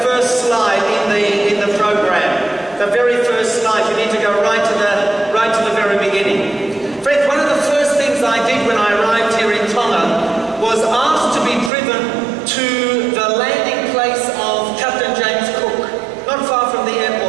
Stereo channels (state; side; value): drops out; left; at 11.7 s